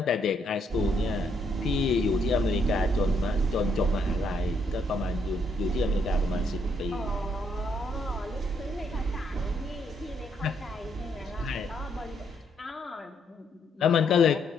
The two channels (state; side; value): normal; both; correlation 0.73